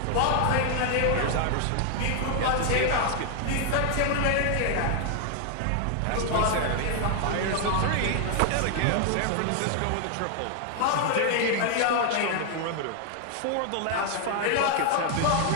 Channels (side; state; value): both; different; correlation 0.00